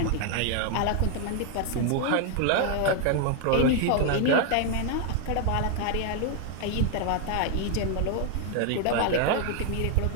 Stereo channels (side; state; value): both; different; correlation 0.00